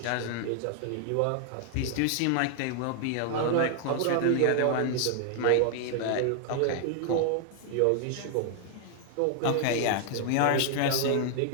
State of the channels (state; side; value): different; both; correlation 0.00